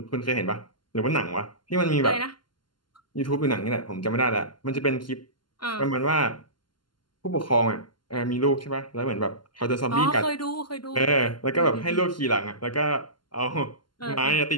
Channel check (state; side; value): late; right; 0.71 ms